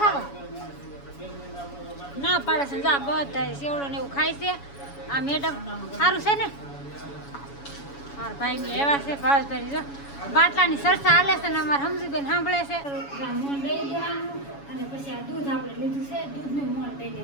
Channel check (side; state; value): right; late; 7.1 ms